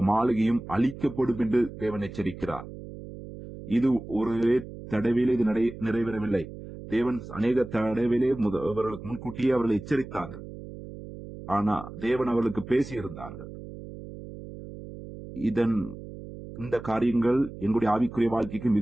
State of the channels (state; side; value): noise; right; hum, 13 dB below the sound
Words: மாளிகையும் அழிக்கப்படும் என்று தேவன் எச்சரிக்கிறார். இது ஒரு தடவையிலே இது நிறைவேறவில்லை. தேவன் அநேக தடவையிலே அவர்களுக்கு முன்கூட்டியே அவர்களை எச்சரித்தார்கள். ஆனா தேவன் அவர்களுக்கு பேசியிருந்தார்கள். இதன் இந்த காரியங்கள் எங்களுடைய ஆவிக்குரிய வாழ்க்கைக்கு